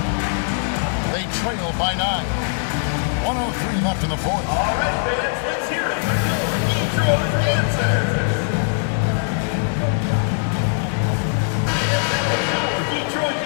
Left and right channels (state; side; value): silent; right; digital silence